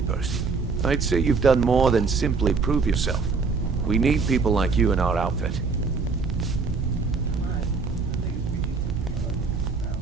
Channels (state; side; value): quieter; left; 4.7 dB